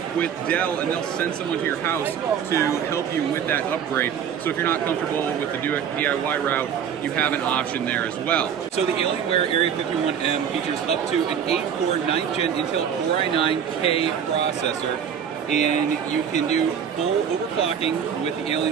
with Dell and they'll send someone to your house to help you with that upgrade. So if you're not comfortable with the DIY route, you have an option there as well. So the Alienware Area-51m features up to an 8-core 9th gen Intel Core i9K processor, and you can do full overclocking with the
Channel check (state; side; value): quieter; left; 8.0 dB